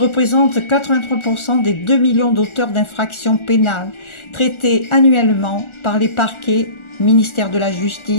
83% des 2 millions d'auteurs d'infractions pénales traités annuellement par les parquets, ministère de la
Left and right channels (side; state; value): right; late; 1.4 ms